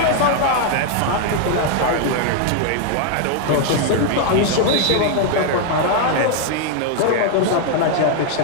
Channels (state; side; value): different; both; correlation 0.00